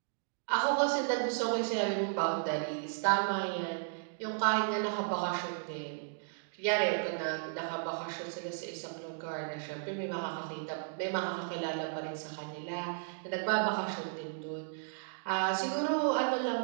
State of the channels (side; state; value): left; silent; digital silence